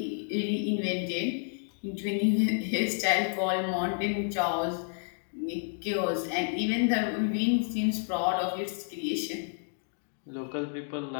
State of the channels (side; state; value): right; silent; 58 dB below the other